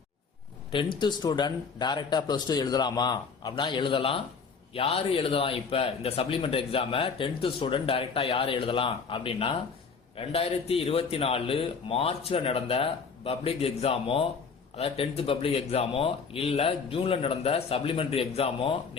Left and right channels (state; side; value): quieter; right; 5.3 dB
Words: 10th ஸ்டூடெண்ட் டைரக்டா +2 எழுதலாமா அப்படின்னா எழுதலாம். யாரு எழுதலாம்? இப்ப இந்த சப்ளிமெண்டரி எக்ஸாம 10th ஸ்டூடெண்ட் டைரக்டா யாரு எழுதலாம் அப்படின்னா 2024 மார்ச்ல நடந்த பப்ளிக் எக்ஸாமோ, அதாவது 10th பப்ளிக் எக்ஸாமோ இல்ல ஜூன்ல நடந்த சப்ளிமெண்டரி எக்ஸாமோ